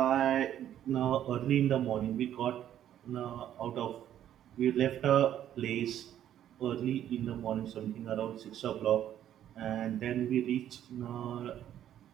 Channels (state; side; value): quieter; left; 11.1 dB